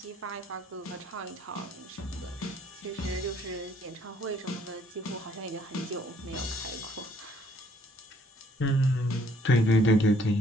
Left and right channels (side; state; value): both; normal; correlation 0.63